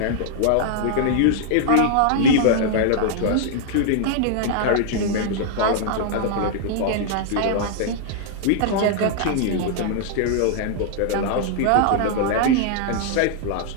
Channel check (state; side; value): different; both; correlation -0.01